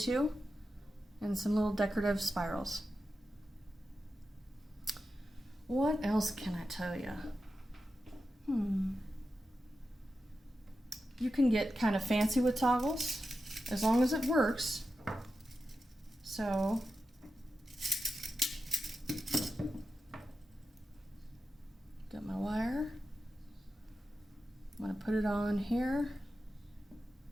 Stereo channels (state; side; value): normal; both; correlation 0.91